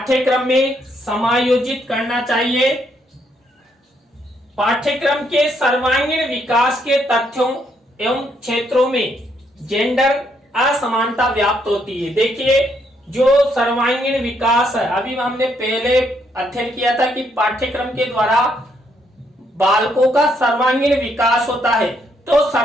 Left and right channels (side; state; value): both; normal; correlation 0.73